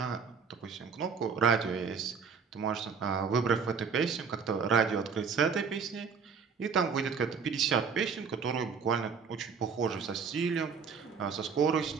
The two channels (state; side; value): quieter; left; 5.9 dB